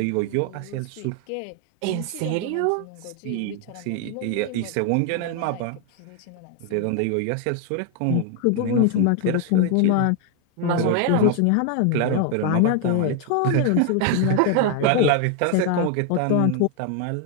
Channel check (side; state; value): both; different; correlation 0.01